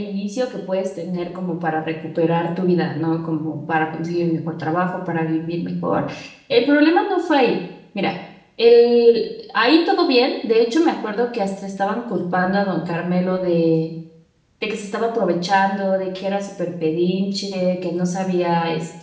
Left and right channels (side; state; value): both; identical; correlation 1.00